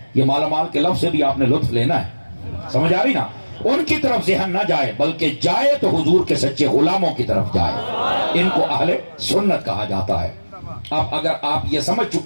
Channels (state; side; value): inverted; both; correlation -1.00